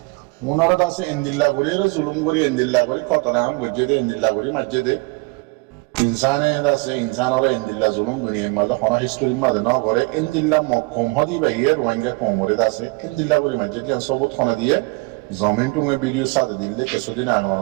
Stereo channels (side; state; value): left; quieter; 27.7 dB